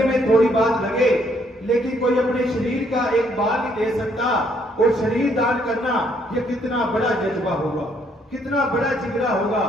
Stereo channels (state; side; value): normal; both; correlation 0.69